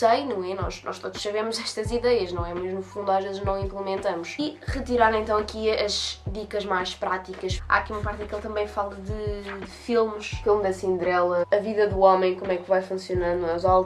não é? Nós todos sabemos estas ideias, não é? Mas no fundo às vezes não implementamos. E retirar então aqui as dicas mais práticas. Há aqui uma parte em que ele também fala de filmes, filme da Cinderela, a vida do homem, como é que vai funcionando, os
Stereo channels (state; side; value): identical; both; correlation 1.00